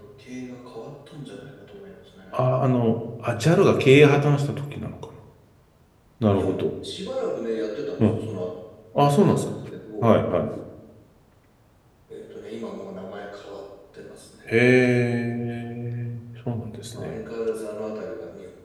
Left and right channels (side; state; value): both; identical; correlation 1.00